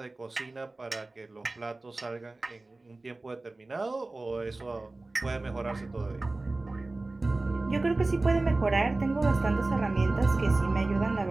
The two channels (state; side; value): quieter; left; 3.1 dB